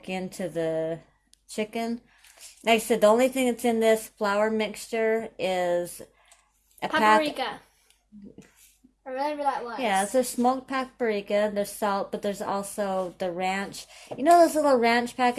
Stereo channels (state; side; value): identical; both; correlation 1.00